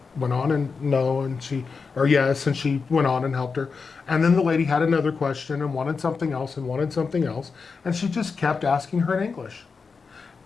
went on and no, and she, or yes, and she went on and helped her. And then the lady had another question and wanted something else and wanted something else. And she just kept asking her in English.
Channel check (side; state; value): right; quieter; 5.0 dB